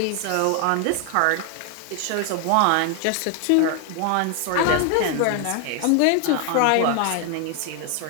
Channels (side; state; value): both; different; correlation 0.00